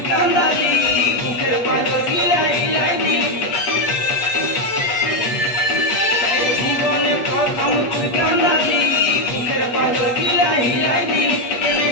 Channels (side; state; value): right; late; 8.4 ms